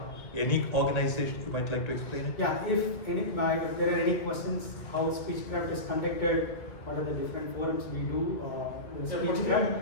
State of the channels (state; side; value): late; right; 2.0 ms